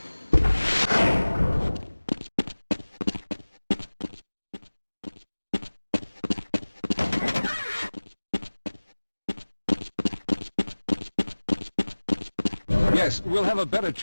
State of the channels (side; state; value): both; inverted; correlation -1.00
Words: Yes, we'll have a better